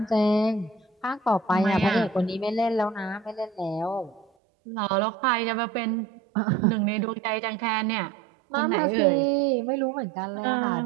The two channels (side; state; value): left; drops out; at 4.2 s